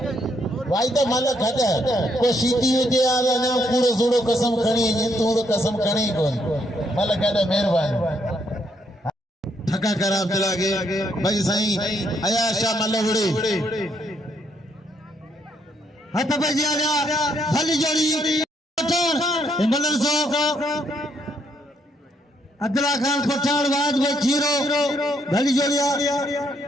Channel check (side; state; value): both; normal; correlation 0.73